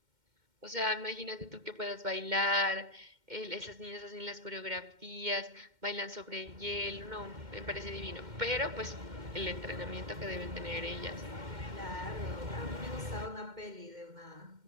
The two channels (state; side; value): late; left; 2.1 ms